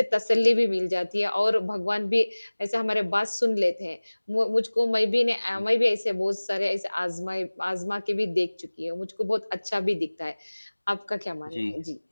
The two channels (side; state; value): both; inverted; correlation -1.00